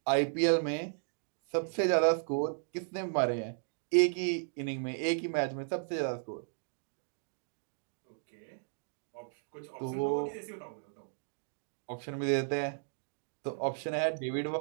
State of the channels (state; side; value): silent; left; digital silence